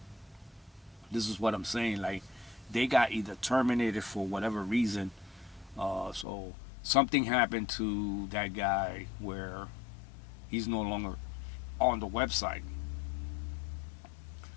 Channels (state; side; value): drops out; right; at 6.2 s